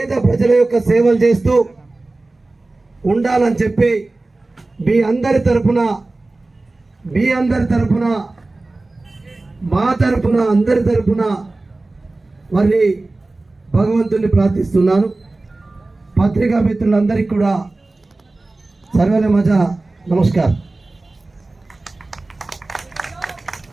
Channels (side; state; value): left; quieter; 3.1 dB